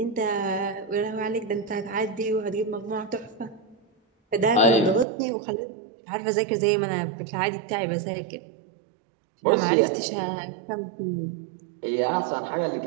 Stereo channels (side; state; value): left; drops out; at 5.1 s